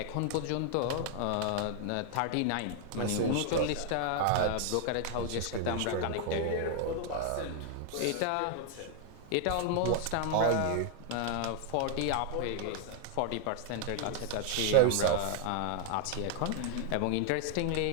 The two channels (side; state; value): both; different; correlation 0.00